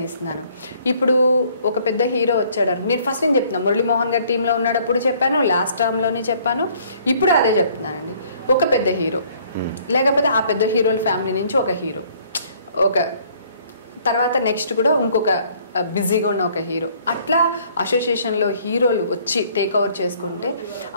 ఇప్పుడు ఒక పెద్ద హీరో వచ్చాడు, నేను ఫస్ట్ నేను చెప్తున్నాను మురళీమోహన్ గారి టీంలో ఉన్నప్పుడు చెప్పాను, లాస్ట్ టర్మ్లోనే చెప్పాను, ఇప్పుడు అదే చెప్తున్నానండి. ఒక పెద్ద హీరో లేకపోతే ఆ పెద్ద హీరోల ఫ్యామిలీ నుంచి ఒక హీరో, ఒక తర్వాత నెక్స్ట్ కూడా ఇంకొక బిజీగా ఉన్న ఒక హీరో, అట్లా అసోసియేషన్లో హీరోలు వచ్చి టేక్ ఓవర్ చేసుకుంటే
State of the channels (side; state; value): both; inverted; correlation -0.60